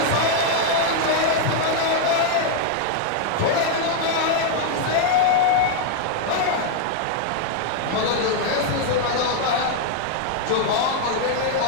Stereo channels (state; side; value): different; both; correlation 0.00